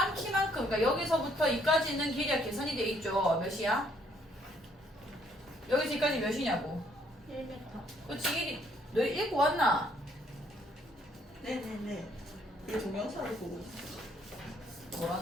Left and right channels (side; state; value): both; normal; correlation 0.67